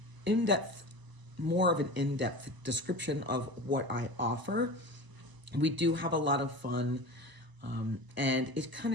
more of an in-depth description of what I offer. We do have a lot of fun, and it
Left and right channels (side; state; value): left; late; 1.0 ms